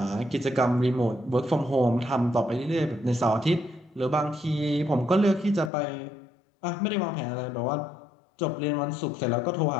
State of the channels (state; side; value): drops out; right; at 5.7 s